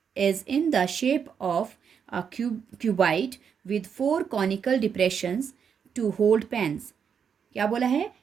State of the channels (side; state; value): left; quieter; 7.1 dB